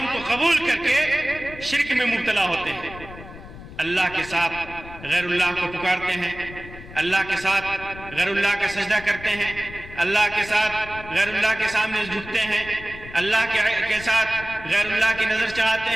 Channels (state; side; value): noise; left; rumble, 15 dB below the sound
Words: کو قبول کر کے شرک میں مبتلا ہوتے ہیں، اللہ کے ساتھ غیر اللہ کو پکارتے ہیں، اللہ کے ساتھ غیر اللہ کا سجدہ کرتے ہیں، اللہ کے ساتھ غیر اللہ کے سامنے جھکتے ہیں، اللہ کے ساتھ غیر اللہ کی نظر چڑھاتے